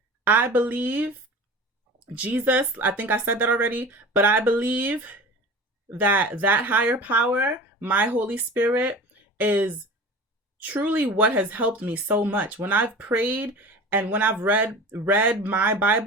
I believe Jesus, I think I said that already, but I believe that that higher power, my Holy Spirit, is truly what has helped me so much. When I've prayed and when I've read my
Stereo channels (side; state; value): both; normal; correlation 0.37